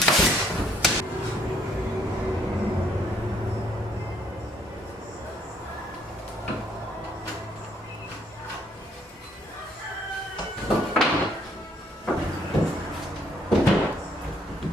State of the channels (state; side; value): normal; both; correlation 0.67